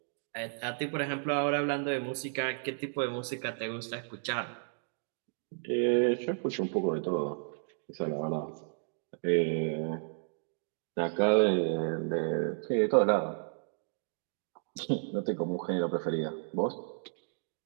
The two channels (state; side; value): silent; left; digital silence